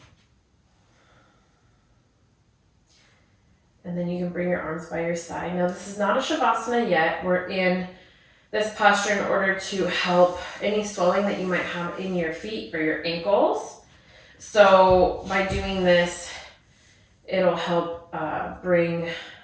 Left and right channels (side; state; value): both; identical; correlation 1.00